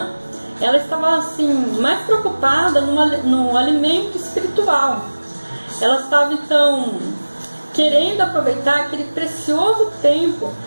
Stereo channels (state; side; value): inverted; both; correlation -1.00